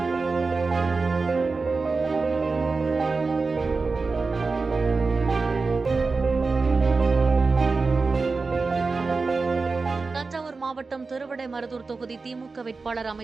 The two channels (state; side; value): quieter; left; 4.1 dB